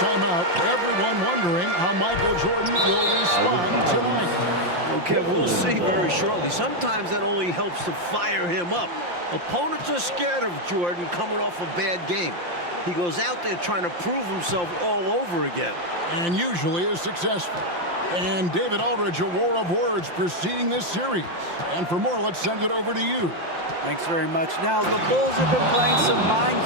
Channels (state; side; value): late; left; 5.7 ms